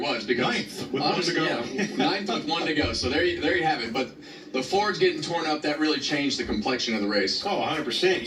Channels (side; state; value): both; identical; correlation 1.00